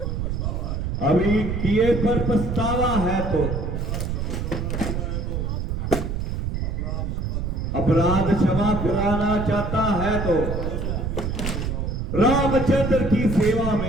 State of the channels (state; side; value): noise; right; rumble, 2 dB below the sound